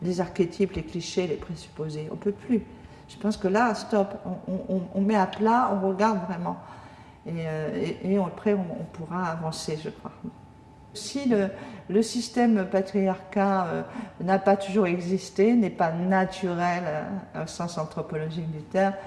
les archétypes, les clichés, les présupposés, on ne peut plus. Je pense que là, stop, on met à plat, on regarde vraiment, et après on pourra avancer, je crois. Si le système patriarcat n'a pas toujours existé, n'est pas naturel au sens anthropologique du terme,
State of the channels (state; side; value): identical; both; correlation 1.00